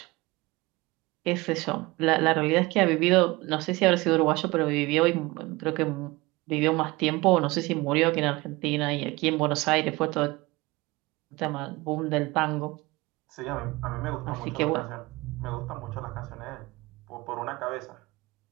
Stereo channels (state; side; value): quieter; left; 22.1 dB